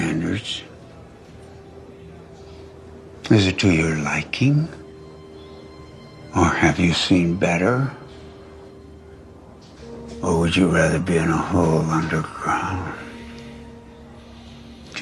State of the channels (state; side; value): identical; both; correlation 1.00